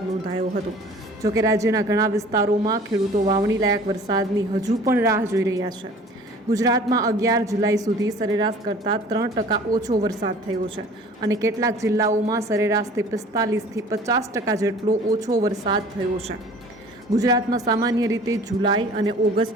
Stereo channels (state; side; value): normal; both; correlation 0.47